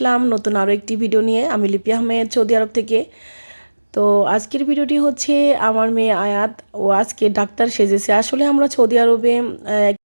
নতুন আরও একটি ভিডিও নিয়ে। আমি লিপি আহমেদ, সৌদি আরব থেকে। তো আজকের ভিডিওটি হচ্ছে আমার মেয়ে আয়াত। ও আজকে ডাক্তার সেজেছে। আসলে আমরা সৌদি আরবে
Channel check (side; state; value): both; inverted; correlation -1.00